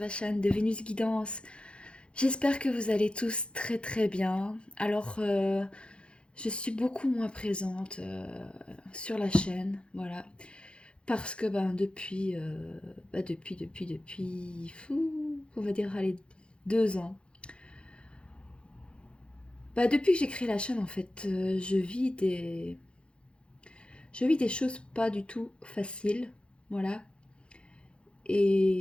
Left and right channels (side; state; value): right; late; 0.057 ms